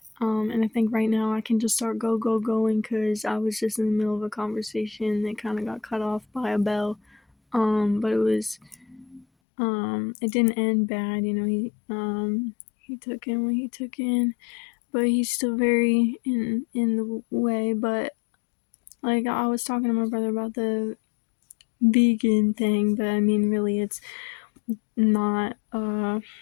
And I think right now I can just start going because I was just in the middle of a conversation that kind of got cut off by a bell. But it didn't end bad. He took in what he took in, but he's still very in the way. But like I was talking to my brother about the vegan thing, but I mean really it's not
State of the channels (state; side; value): drops out; right; at 9.2 s